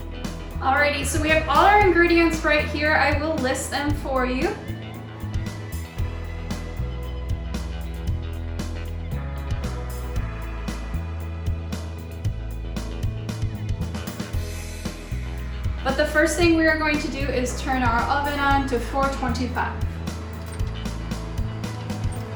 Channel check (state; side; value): identical; both; correlation 1.00